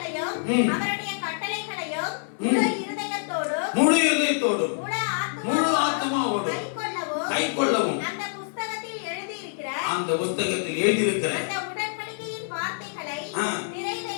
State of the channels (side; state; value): right; silent; 61 dB below the other